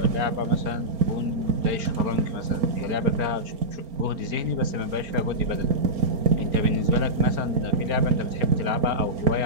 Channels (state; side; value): late; left; 4.4 ms